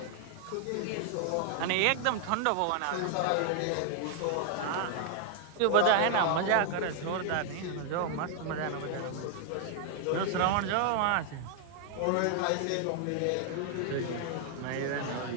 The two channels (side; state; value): both; different; correlation 0.00